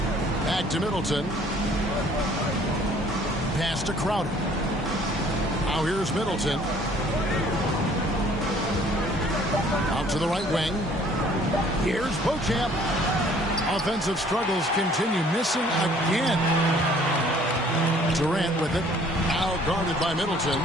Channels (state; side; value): normal; both; correlation 0.57